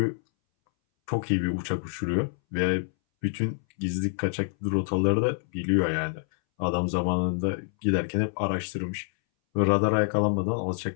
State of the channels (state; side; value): silent; right; 60 dB below the other